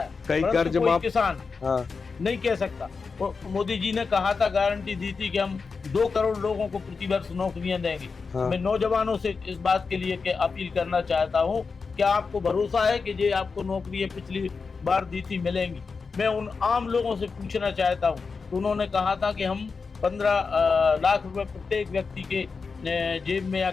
परंतु कोई किसान नहीं कह सकता। मोदी जी ने कहा था, गारंटी दी थी कि हम 2 करोड़ लोगों को प्रतिवर्ष नौकरियां देंगे। मैं नौजवानों से इस बात के लिए अपील करना चाहता हूं, क्या आपको भरोसा है कि ये आपको नौकरियां पिछली बार दी थी मिलेंगी? मैं उन आम लोगों से पूछना चाहता हूं, तो उन्होंने कहा था कि हम 15 लाख रुपए प्रत्येक व्यक्ति के जेब में या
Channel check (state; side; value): quieter; right; 4.8 dB